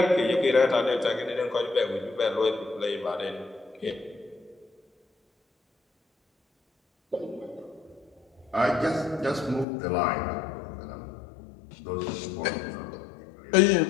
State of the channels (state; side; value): drops out; right; at 9.7 s